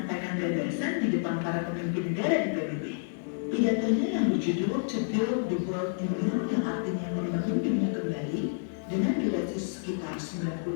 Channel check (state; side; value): silent; right; digital silence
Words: gagasan di depan para pemimpin negara di PBB. Pidatonya yang berjudul To Build the World New, yang artinya membangun dunia kembali, dengan durasi sekitar